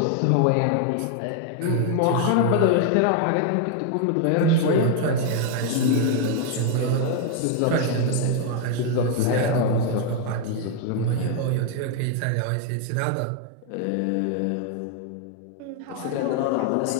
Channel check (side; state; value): both; different; correlation 0.00